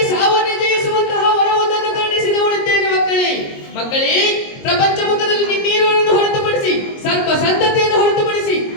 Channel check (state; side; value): late; right; 22 ms